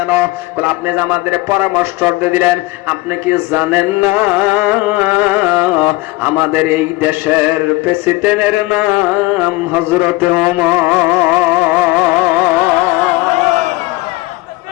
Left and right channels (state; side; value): quieter; right; 21.1 dB